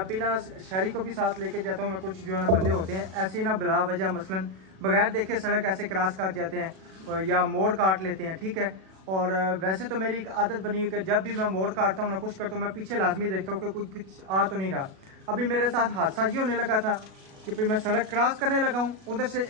भी ना शहरी को भी साथ लेके जाता हूँ, मैं कुछ जो है ना बंदे होते हैं ऐसे ना बिला वजह मसलन बगैर देखे सड़क ऐसे क्रॉस काट जाते हैं या मोड़ काट लेते हैं, ठीक है। और वैसे तो मेरी एक आदत बनी हुई कि जब भी मैं मोड़ काटता हूँ ना कुछ करता हूँ, मैं पीछे लाजमी देखता हूँ कि कुछ आ तो नहीं रहा। अभी मेरे साथ हादसा ये होने लगा था कि फिर मैं सड़क क्रॉस करने लगा हूँ, उधर से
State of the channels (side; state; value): left; late; 37 ms